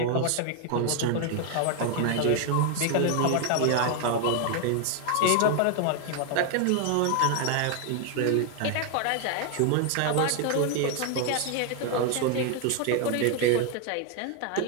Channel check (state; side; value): different; both; correlation 0.00